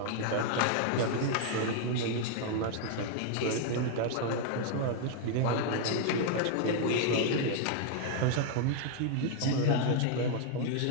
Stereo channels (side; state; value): both; different; correlation 0.00